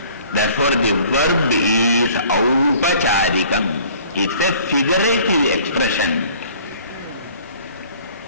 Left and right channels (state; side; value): inverted; both; correlation -0.53